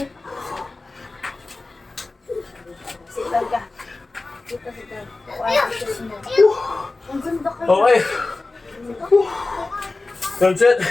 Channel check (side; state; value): right; quieter; 3.3 dB